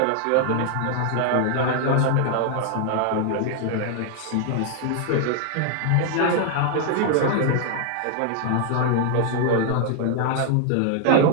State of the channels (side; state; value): both; different; correlation 0.00